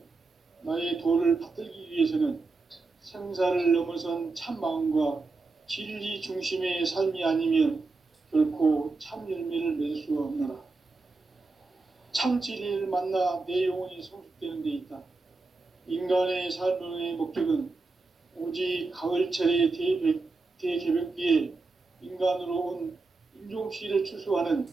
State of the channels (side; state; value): left; quieter; 3.7 dB